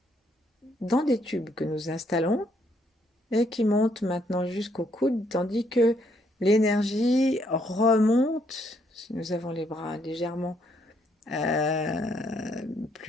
dans des tubes que nous installons et qui montent maintenant jusqu'au coude, tandis que l'énergie remonte, si nous avons les bras légèrement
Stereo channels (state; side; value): normal; both; correlation 0.71